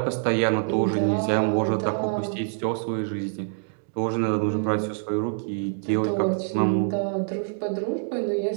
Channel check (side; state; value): left; silent; digital silence